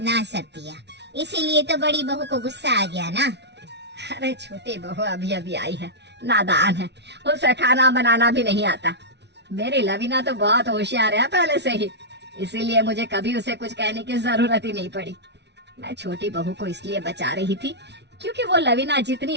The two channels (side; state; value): left; late; 0.50 ms